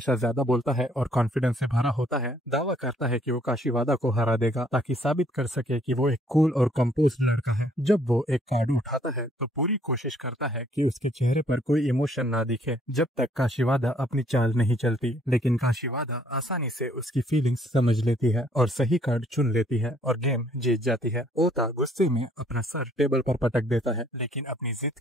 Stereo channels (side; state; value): both; normal; correlation 0.64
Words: ज्यादा बोलता है और कॉन्फिडेंस से भरा होता है, दावा करता है कि वो काशीवादा को हरा देगा ताकि साबित कर सके कि वो एक कूल और कंपोज्ड लड़का है। जब वो एक कार्ड उठाता है तो पूरी कोशिश करता है कि उसके चेहरे पर कोई इमोशन ना दिखे जब तक काशीवादा अपनी चाल नहीं चलती। लेकिन काशीवादा आसानी से उसकी फीलिंग्स समझ लेती है और सही कार्ड चुन लेती है और गेम जीत जाती है। ओता गुस्से में अपना सर टेबल पर पटक देता है, लेकिन अपनी जिद